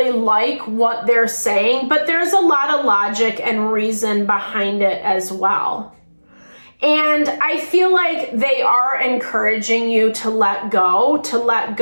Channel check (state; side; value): inverted; both; correlation -1.00